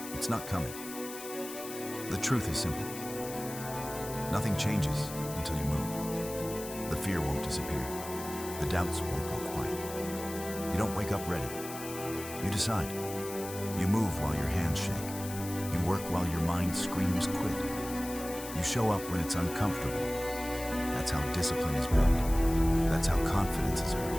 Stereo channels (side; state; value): left; noise; hiss, 11 dB below the sound